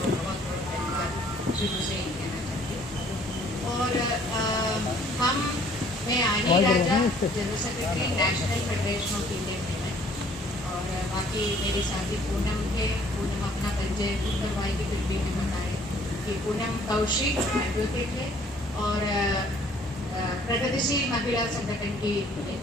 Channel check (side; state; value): both; normal; correlation 0.58